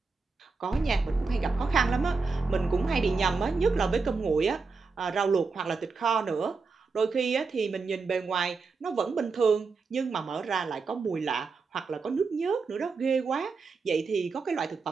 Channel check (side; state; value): left; quieter; 4.5 dB